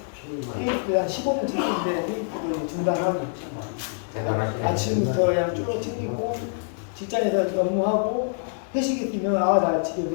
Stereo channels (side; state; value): right; silent; digital silence